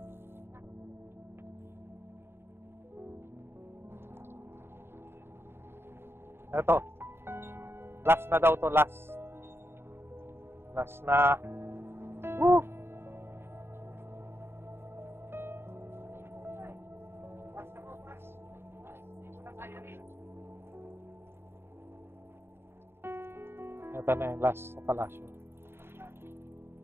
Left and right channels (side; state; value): left; late; 0.11 ms